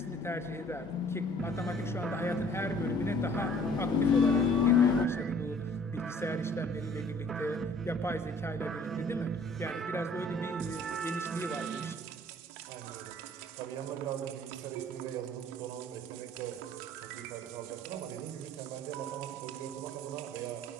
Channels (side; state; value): both; normal; correlation 0.54